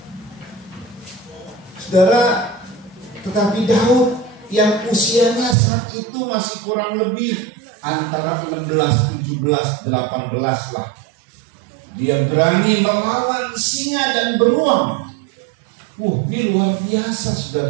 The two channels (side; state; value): left; drops out; at 5.6 s